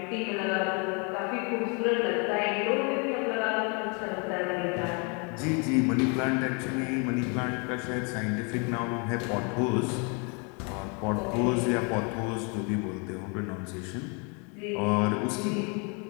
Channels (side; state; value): right; quieter; 34.1 dB